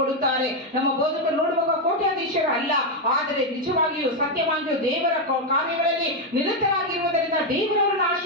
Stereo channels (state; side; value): normal; both; correlation 0.04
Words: ಕೊಡುತ್ತಾರೆ. ನಮ್ಮ ಬೋಧಕರು ನೋಡುವಾಗ ಕೋಟ್ಯಾಧೀಶರು ಅಲ್ಲ, ಆದರೆ ನಿಜವಾಗಿಯೂ ಸತ್ಯವಾಗಿಯೂ ದೇವರ ಕಾರ್ಯಗಳಲ್ಲಿ ನಿರತರಾಗಿರುವುದರಿಂದ ದೇವರವರನ್ನು